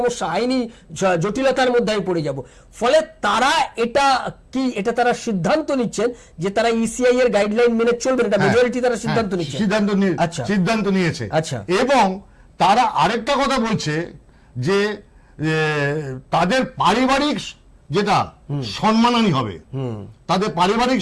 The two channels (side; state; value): both; identical; correlation 1.00